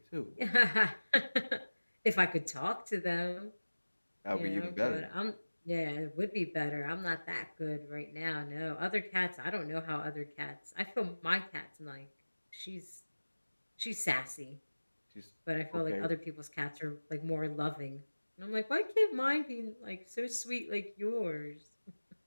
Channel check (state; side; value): inverted; both; correlation -1.00